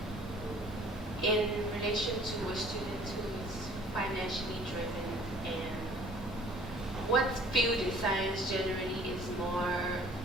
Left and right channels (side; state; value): both; normal; correlation 0.52